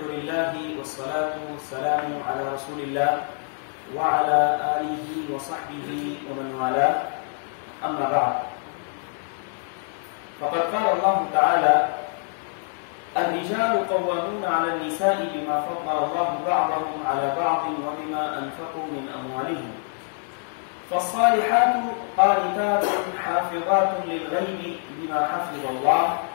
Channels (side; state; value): right; silent; 58 dB below the other